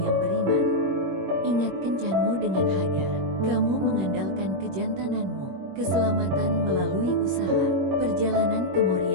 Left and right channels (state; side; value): late; left; 21 ms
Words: yang beriman. Ingat kencanmu dengan Hagar, kamu mengandalkan kejantananmu. Keselamatan melalui usaha. Perjalanan ke